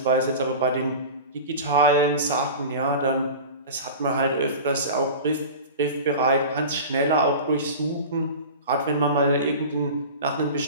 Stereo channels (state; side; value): inverted; both; correlation -0.33